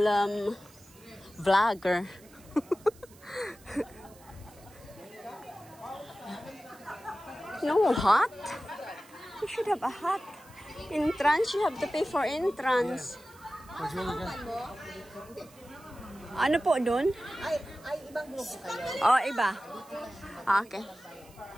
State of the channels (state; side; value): noise; right; hiss, 25 dB below the sound